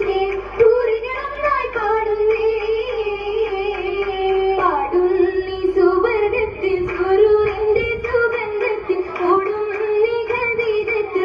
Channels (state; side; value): identical; both; correlation 1.00